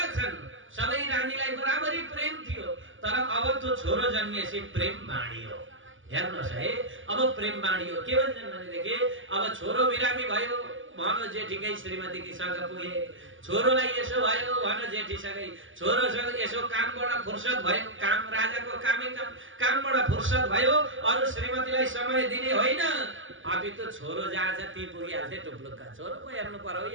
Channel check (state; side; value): late; left; 0.57 ms